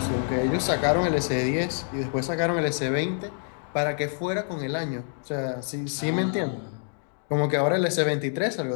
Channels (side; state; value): right; silent; digital silence